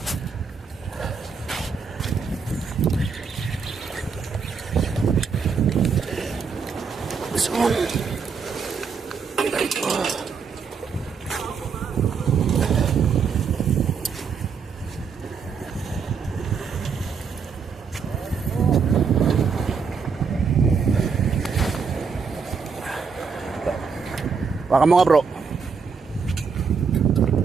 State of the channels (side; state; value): left; quieter; 5.7 dB